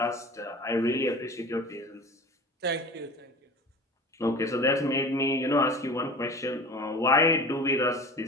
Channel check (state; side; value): normal; both; correlation 0.38